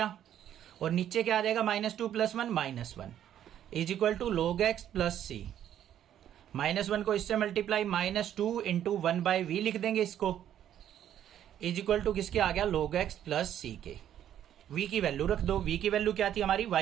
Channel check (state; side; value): quieter; left; 10.6 dB